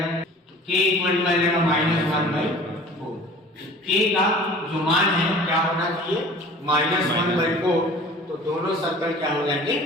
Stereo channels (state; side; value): normal; both; correlation 0.45